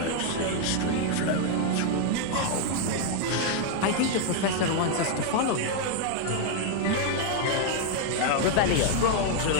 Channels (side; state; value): both; different; correlation 0.00